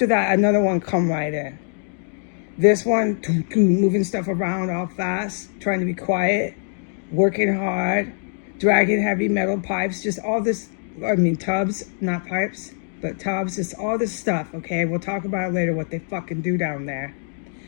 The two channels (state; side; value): silent; right; digital silence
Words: that, another one come right in. This one, moving stuff around all fast, trying to be quiet, working hard, dragging heavy metal pipes, just all this, tubs, not pipes, but tubs, just all this stuff, okay? We'll talk about it later, what they fucking do down there.